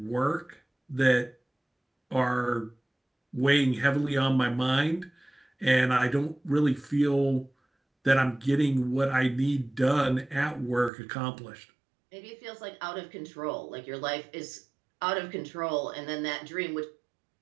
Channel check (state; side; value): drops out; left; at 10.9 s